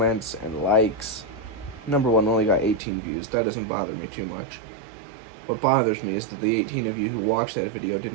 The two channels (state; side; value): drops out; left; at 2.8 s